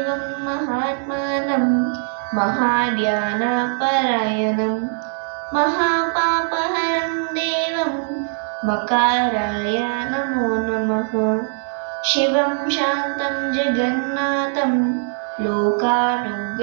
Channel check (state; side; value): silent; left; 65 dB below the other